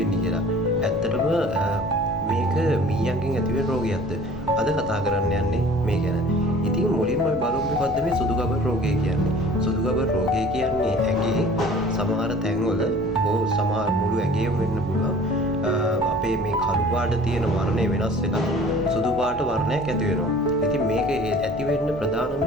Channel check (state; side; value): normal; both; correlation 0.47